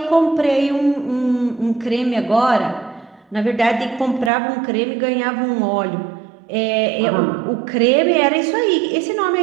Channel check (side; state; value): left; drops out; at 4.3 s